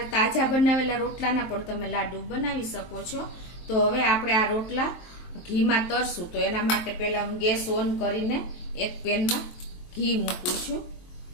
તાજા બનાવેલા રોટલાના પણ તમે લાડુ બનાવી શકો છો। તો હવે આપણે આ રોટલા ઘીમાં તરશું। તો એના માટે પહેલા હું ગેસ ઓન કરીને એક પેનમાં ઘી મૂકું છું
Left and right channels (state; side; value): late; right; 23 ms